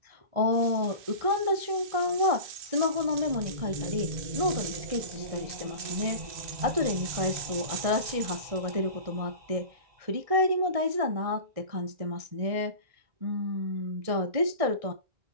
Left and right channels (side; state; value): left; late; 1.6 ms